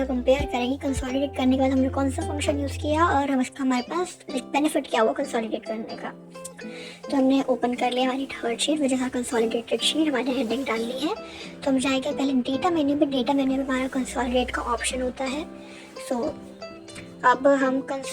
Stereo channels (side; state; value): both; identical; correlation 1.00